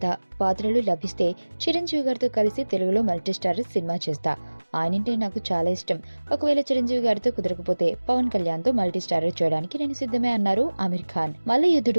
పాత్రలు లభిస్తే చిరంజీవి గారితో కలిసి తెలుగులో మల్టీస్టారర్ సినిమా చేస్తా. ఆయనంటే నాకు చాలా ఇష్టం. ఒకవేళ చిరంజీవి గారితో కుదరకపోతే పవన్ కళ్యాణ్ తో మల్టీస్టారర్ చేయడానికి నేను సిద్ధమే అన్నారు ఆమిర్ ఖాన్.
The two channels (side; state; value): both; inverted; correlation -1.00